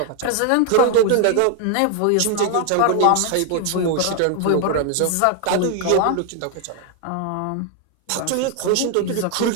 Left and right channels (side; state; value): both; different; correlation 0.00